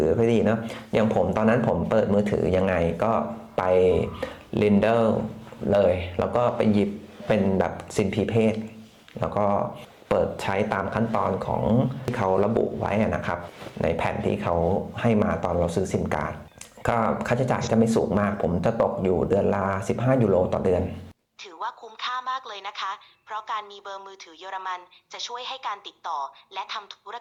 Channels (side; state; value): both; identical; correlation 1.00